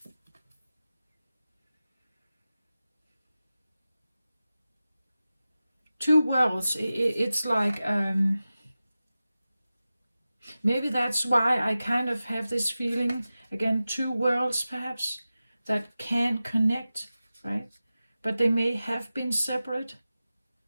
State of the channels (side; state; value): both; inverted; correlation -0.95